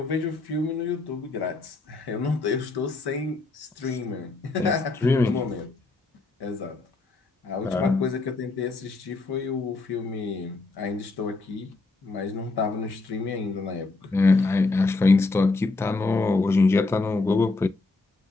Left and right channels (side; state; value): right; quieter; 3.5 dB